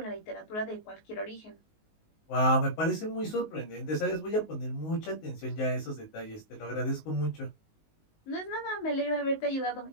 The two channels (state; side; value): late; right; 19 ms